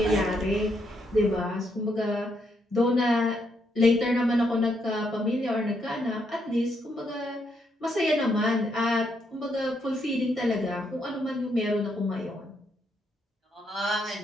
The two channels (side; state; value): both; normal; correlation 0.76